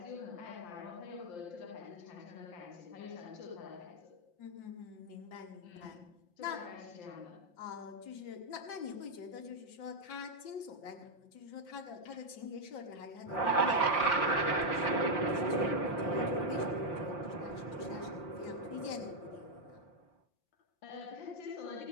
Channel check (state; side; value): late; right; 5.7 ms